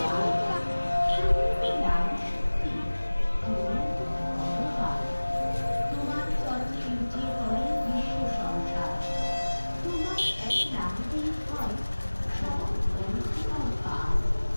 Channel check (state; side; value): inverted; both; correlation -1.00